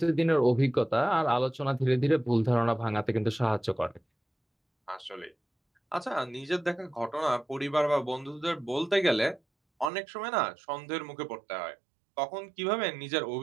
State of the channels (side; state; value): left; drops out; at 9.9 s